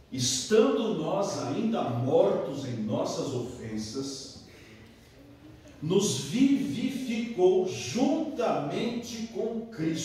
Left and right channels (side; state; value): both; identical; correlation 1.00